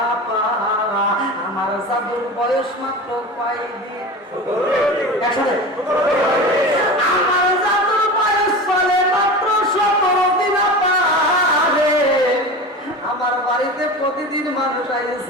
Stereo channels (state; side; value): normal; both; correlation 0.30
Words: আপা আমার জাদুর বয়স মাত্র কয়দিন। একসাথে আমার জাদুর বয়স চলে মাত্র 17 দিন। আপা রে আমার বাড়িতে প্রতিদিন মানুষ